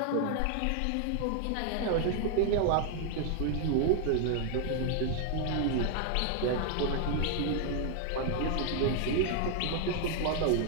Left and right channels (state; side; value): different; both; correlation 0.00